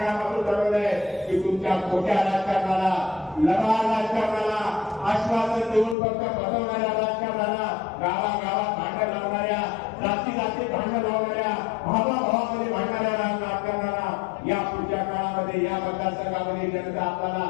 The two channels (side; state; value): right; drops out; at 6.0 s